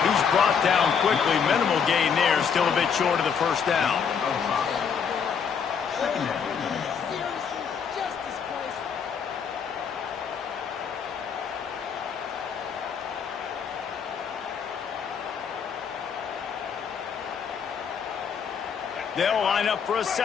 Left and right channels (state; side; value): quieter; right; 6.8 dB